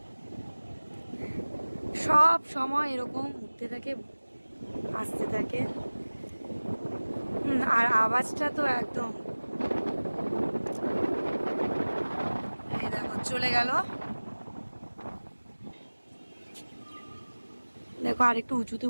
সব সময় এরকম উঠতে থাকে, আসতে থাকে। আর আওয়াজটা তো একদম, এই দেখো চলে গেল। দেখো আরেকটু উঁচুতে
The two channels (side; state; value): both; inverted; correlation -1.00